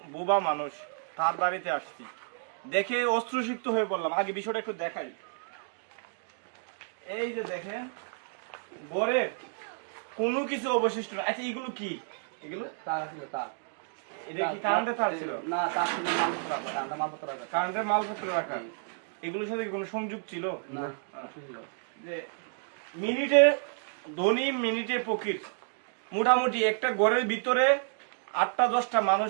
বোবা মানুষ, তার বাড়িতে আসছি। দেখে অশ্রুসিক্ত হয়ে পড়লাম। আগে বিষয়টা একটু দেখাই। এই যে দেখেন, বরের কোনো কিছু অবশিষ্ট না। আচ্ছা, এগুলো কি? এগুলো তার ছিল তার। এটা কি কারেন্টের তার ছিল? না, তার ছিল মালপত্র রাখা, কারেন্টের মালপত্র রাখা। কারেন্টের মালপত্র রাখা। এগুলোর সাথে কোনো সংযোগ ছিল না। যে মিনিটে ধনী মিনিটে ফকির। মোটামুটি একটা ঘরের ভিতরে 8টা-10টা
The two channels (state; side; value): silent; left; digital silence